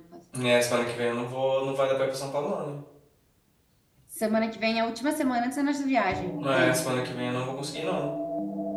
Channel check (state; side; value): identical; both; correlation 1.00